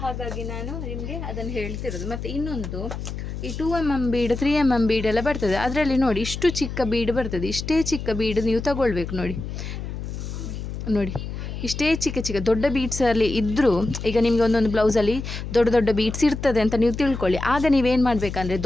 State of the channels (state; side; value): noise; left; hum, 7 dB below the sound